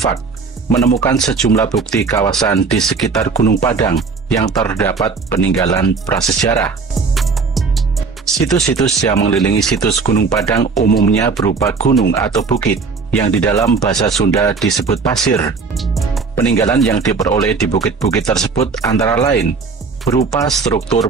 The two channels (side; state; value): left; quieter; 4.8 dB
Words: menemukan sejumlah bukti kawasan di sekitar Gunung Padang yang terdapat peninggalan prasejarah. Situs-situs yang mengelilingi situs Gunung Padang umumnya berupa gunung atau bukit yang di dalam bahasa Sunda disebut pasir. Peninggalan yang diperoleh di bukit-bukit tersebut antara lain berupa struktur